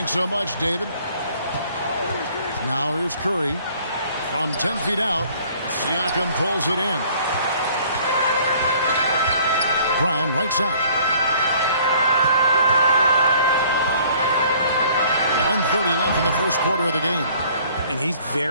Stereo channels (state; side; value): inverted; both; correlation -0.56